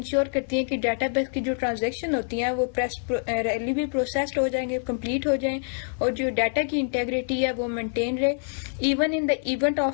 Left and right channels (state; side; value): silent; right; 61 dB below the other